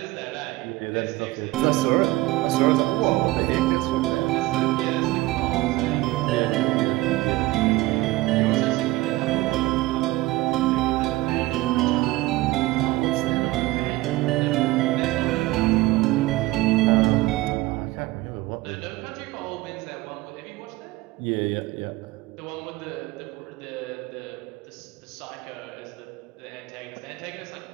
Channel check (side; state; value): left; quieter; 18.9 dB